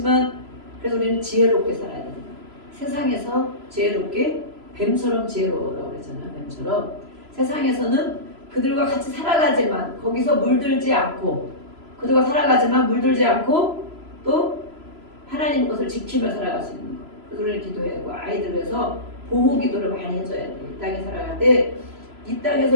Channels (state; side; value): late; left; 3.0 ms